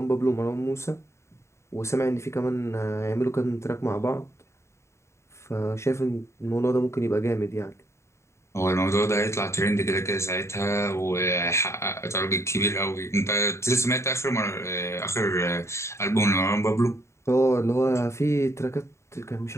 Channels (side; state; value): right; late; 0.13 ms